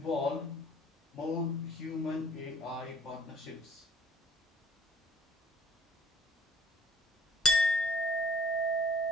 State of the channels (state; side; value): normal; both; correlation 0.56